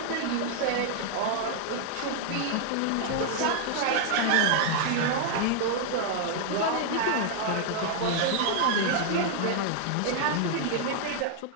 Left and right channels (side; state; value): both; different; correlation 0.00